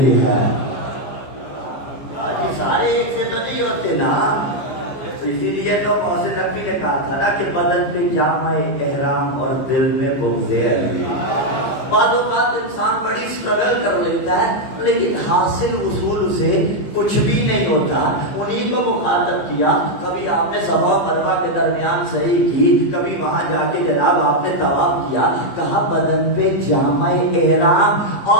ہے. حاجی سارے ایک سے تو نہیں ہوتے نا، اسی لیے تو محسن نقوی نے کہا تھا نا کہ بدن پہ جامع احرام اور دل میں بغض علی. بعض اوقات انسان بڑی اسٹرگل کر لیتا ہے لیکن حاصل رسول سے کچھ بھی نہیں ہوتا. انہیں کو مخاطب کیا، کبھی آپ نے صفا و مروہ کے درمیان صحیح کی، کبھی وہاں جا کے جناب آپ نے طواف کیا، کہا بدن پہ جامع احرام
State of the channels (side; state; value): right; late; 14 ms